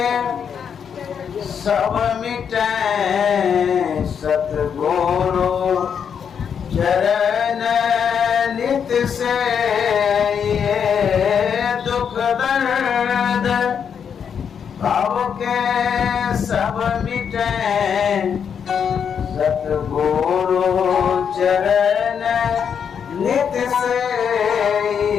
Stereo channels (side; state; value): right; quieter; 7.4 dB